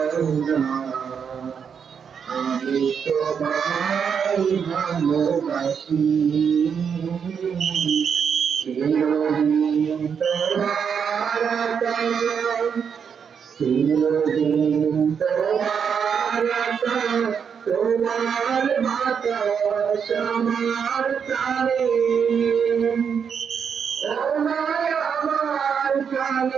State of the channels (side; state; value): left; quieter; 7.0 dB